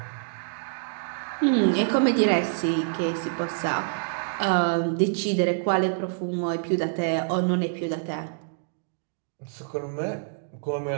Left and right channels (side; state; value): left; silent; digital silence